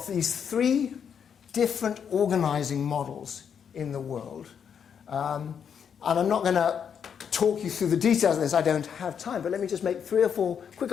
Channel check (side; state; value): right; quieter; 7.6 dB